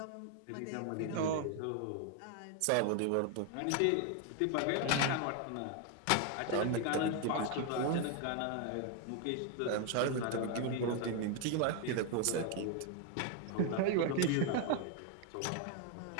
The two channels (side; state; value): both; different; correlation 0.01